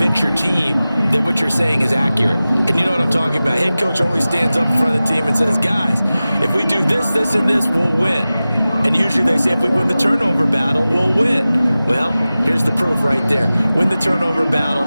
your team that what you're saying is accurate. And you know what I'm talking about. Head coach always stands up in front of the team and says, guys, if we do this, this, and this, we'll win. And usually they say if we win the turnover battle, we'll win. Well, here's the proof right there. Win the turnover battle,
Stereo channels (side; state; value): both; inverted; correlation -0.96